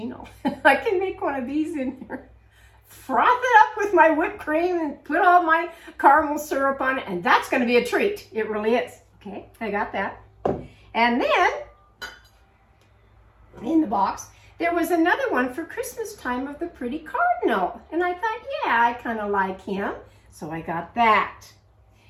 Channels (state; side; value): identical; both; correlation 1.00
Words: I can make one of these in here. Froth it up with my whipped cream and put all my caramel syrup on it. And that's going to be a treat. It really is. Okay, I got that. And then, in the box, there was another one for Christmas time of the pretty cardinal. And I thought, yeah, I kind of like him. So I got that.